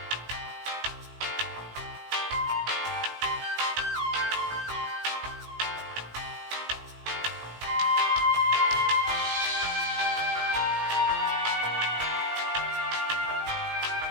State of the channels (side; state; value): left; late; 18 ms